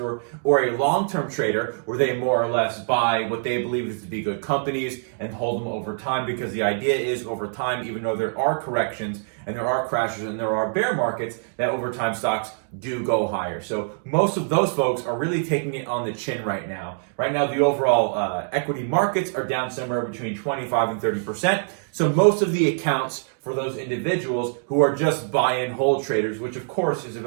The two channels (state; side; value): silent; left; digital silence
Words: or a long-term trader, where they more or less buy what they believe is to be good companies and hold them over time, because the idea is over time, even though there are corrections and there are crashes and there are bear markets, that over time stocks do go higher. So most of those folks are really taking it on the chin right now. Right now, the overall equity markets are down somewhere between 25 and 30%. So most of the accounts for those individuals who are just buy and hold traders, which of course is